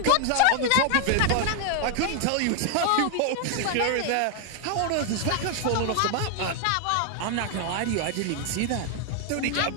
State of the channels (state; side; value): different; both; correlation 0.00